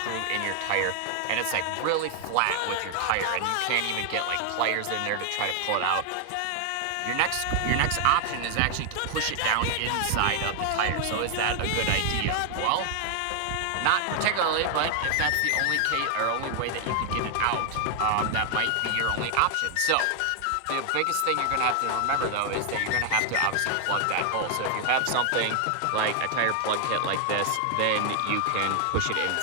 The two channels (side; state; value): both; different; correlation 0.00